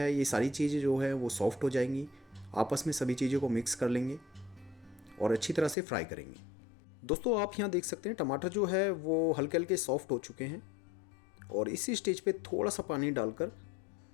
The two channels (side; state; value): right; drops out; at 5.8 s